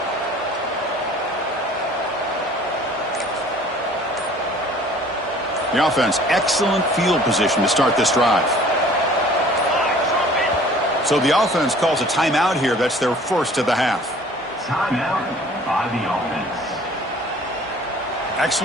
The offense, excellent field position to start this drive. So the offense calls a timeout here. That's their first of the half. Timeout by the offense.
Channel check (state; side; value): normal; both; correlation 0.51